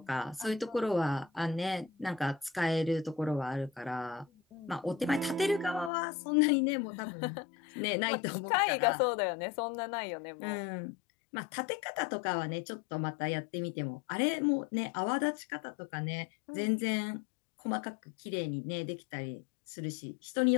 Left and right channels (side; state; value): right; drops out; at 5.9 s